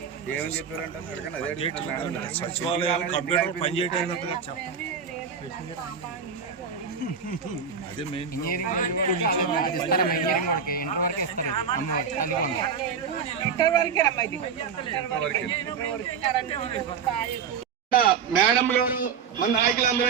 ఏమని చెప్పారంటే సచివాలయం కంప్యూటర్ పనిచేయడానికి ఇంజనీరింగ్ అది ఇస్తారమ్మా. ఇంజనీరింగ్ వాడికి ఇంటర్ వరకే ఇస్తారు. ఇది అమ్మవాడి తల్లికి వంద. మేడం గారు మన నాయకులు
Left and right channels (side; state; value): left; quieter; 6.5 dB